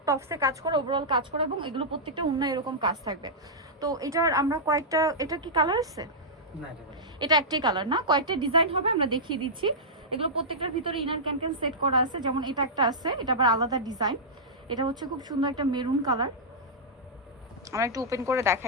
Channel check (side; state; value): both; normal; correlation -0.11